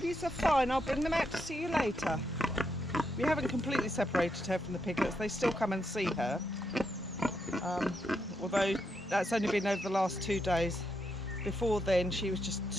are fine, I'll bring them out to see you later. We haven't completely separated her from the piglets, they still come and see her. Although that's only been over the last 2 days. Before then she was just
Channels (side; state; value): both; normal; correlation 0.81